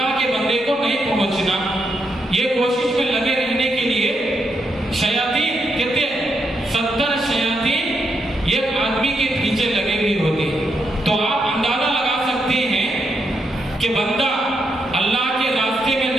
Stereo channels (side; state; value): both; normal; correlation 0.80